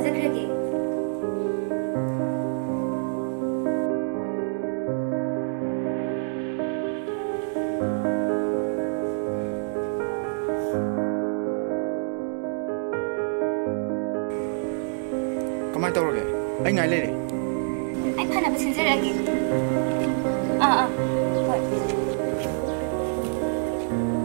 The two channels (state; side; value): silent; left; digital silence